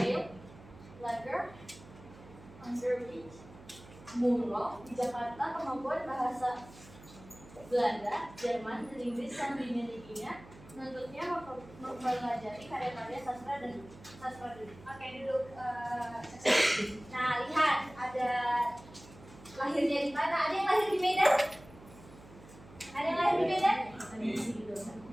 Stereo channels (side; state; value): right; noise; hum, 20 dB below the sound